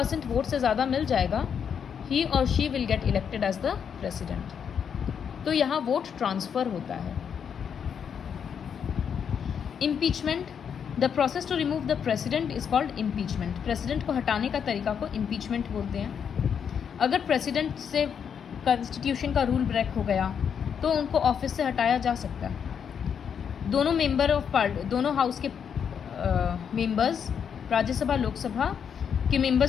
वोट से ज़्यादा मिल जाएगा, ही और she will get elected as the president. तो यहाँ वोट ट्रांसफ़र होता है। Impeachment, the process to remove the president is called impeachment. President को हटाने का तरीका को इम्पीचमेंट बोलते हैं। अगर प्रेसिडेंट से कॉन्स्टिट्यूशन का रूल ब्रेक हो गया तो उनको ऑफिस से हटाया जा सकता है। दोनों मेंबर ऑफ दोनों हाउस के मेंबर्स, राज्यसभा लोकसभा के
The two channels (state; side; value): quieter; right; 7.5 dB